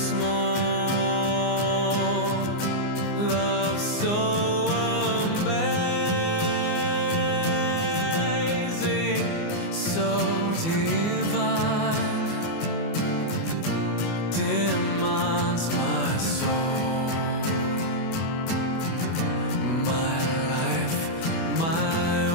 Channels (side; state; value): right; late; 24 ms